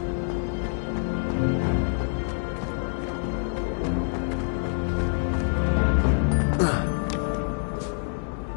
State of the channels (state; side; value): silent; right; digital silence